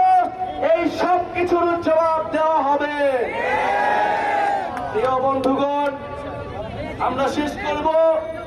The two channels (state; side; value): identical; both; correlation 1.00